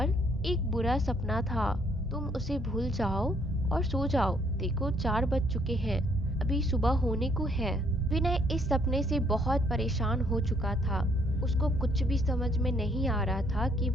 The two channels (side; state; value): both; normal; correlation 0.67